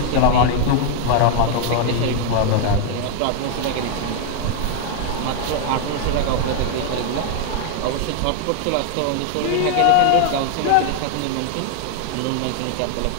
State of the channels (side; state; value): both; different; correlation 0.00